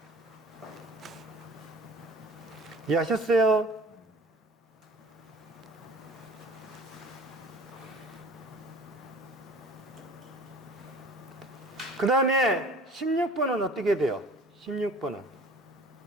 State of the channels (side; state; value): both; normal; correlation 0.46